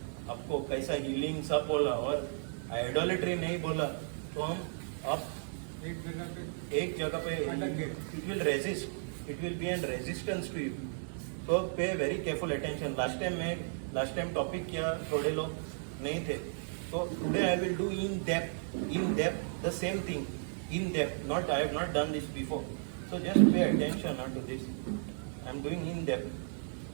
आपको कैसा healing सब बोला और idolatry नहीं बोला, तो हम अब एक जगह पे it will resist. It will be an resistance to you. So pay very careful attention. Last time topic किया थोड़े लोग नहीं थे. So today I will do in depth the same thing. In depth. Not I have not done this before. So just pay attention to this. I am doing in depth.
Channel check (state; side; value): silent; left; digital silence